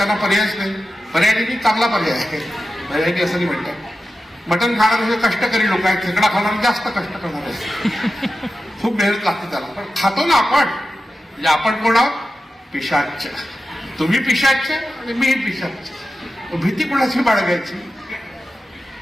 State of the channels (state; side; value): normal; both; correlation 0.93